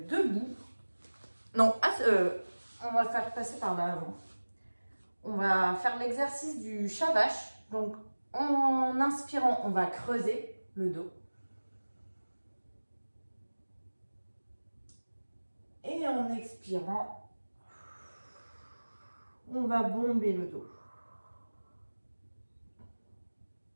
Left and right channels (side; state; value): both; inverted; correlation -1.00